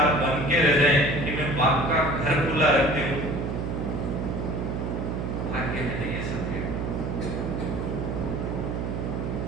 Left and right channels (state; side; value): noise; right; hum, 3 dB below the sound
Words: बन के रह जाएं कि मैं बाप का घर खुला रखती हूँ, भाग्य में नहीं